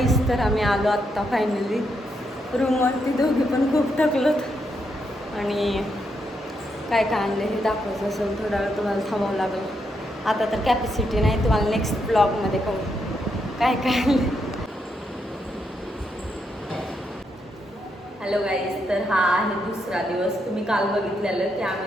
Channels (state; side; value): normal; both; correlation 0.80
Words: तर आम्ही आलो आत्ता फायनली रूमवरती. दोघी पण खूप थकलोत आणि काय काय आणले हे दाखवायचं असेल थोडा वेळ तुम्हाला थांबावं लागेल. आता तर कॅपॅसिटी नाही, तुम्हाला नेक्स्ट ब्लॉगमध्ये कळू काय काय आणले. हॅलो गाईज, तर हा आहे दुसरा दिवस. तुम्ही काल बघितलेलं की